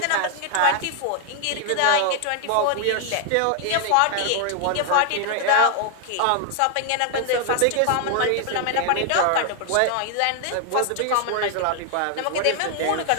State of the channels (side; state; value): both; different; correlation 0.00